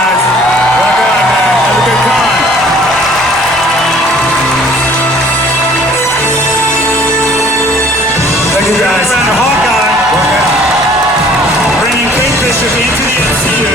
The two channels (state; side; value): normal; both; correlation 0.54